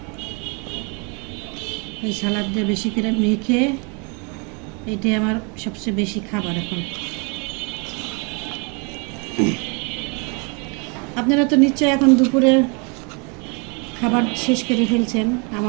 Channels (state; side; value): quieter; left; 33.1 dB